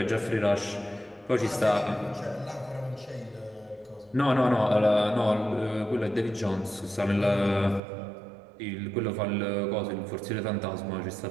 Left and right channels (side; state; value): left; drops out; at 7.8 s